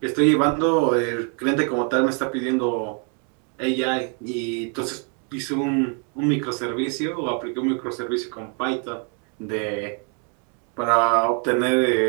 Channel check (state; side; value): quieter; left; 37.6 dB